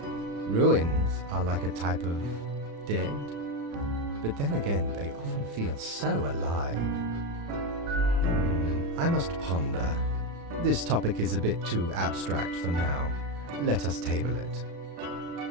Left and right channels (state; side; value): late; left; 35 ms